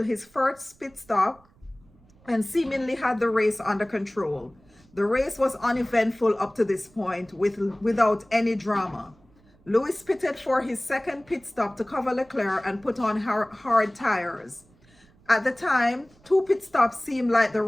his first pit stop and seemingly had the race under control. The race was uneventful up to this point without any drama. Lewis pitted for his second pit stop to cover Leclerc and put on hard tires. At the time, 2 pit stops seemed like the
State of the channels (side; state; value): right; noise; rumble, 30 dB below the sound